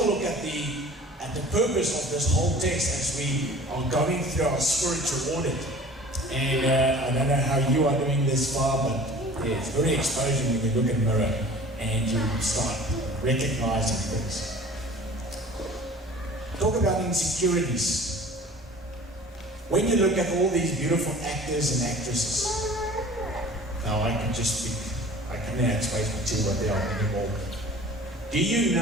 a look at the purpose of this whole text as we are going through our spiritual audit. And I don't know how you are doing this far, but it's very exposing when you look in the mirror and you start recognizing things. Talk about insecurities. When you look at all these beautiful actors and actresses, now I can just speak, I can add space for two, but there aren't any more. Do you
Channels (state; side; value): normal; both; correlation 0.44